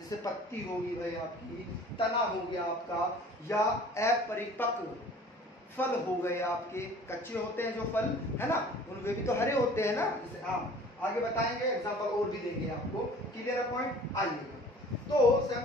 पत्ती होगी भाई आपकी, तना हो गया आपका, या अपरिपक्व फल हो गए आपके, कच्चे होते हैं जो फल है ना, उनमें भी तो हरे होते हैं ना, जैसे आम। आगे बताएंगे, एग्जांपल और भी देंगे आपको। Clear point? आइएगा। तो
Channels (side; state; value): both; normal; correlation 0.48